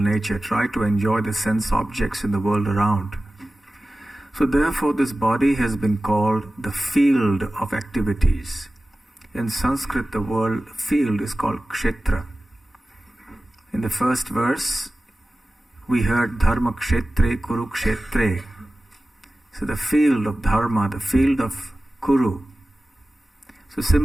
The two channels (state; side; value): normal; both; correlation 0.95